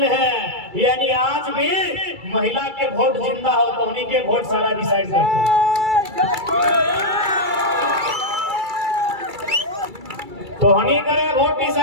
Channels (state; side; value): late; left; 2.3 ms